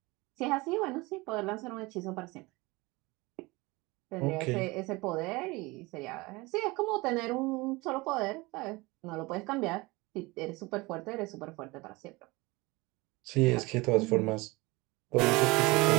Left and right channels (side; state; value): left; quieter; 23.2 dB